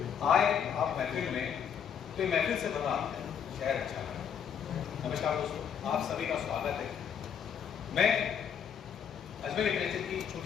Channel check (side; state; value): right; quieter; 8.0 dB